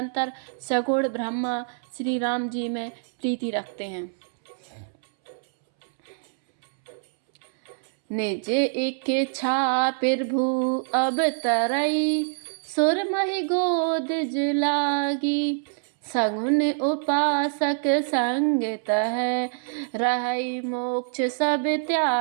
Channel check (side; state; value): left; silent; 62 dB below the other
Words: सगुण ब्रह्मा श्री राम जी में प्रीति रखते हैं। निज इच्छा प्रभु अब तरई, सुरमहि गोद लागी। सगुन उपासक संग तह, रहई मोक्ष सब